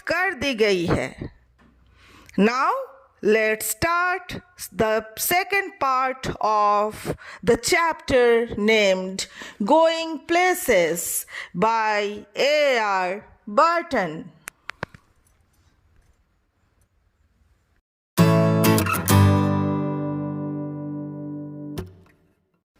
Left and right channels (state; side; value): identical; both; correlation 1.00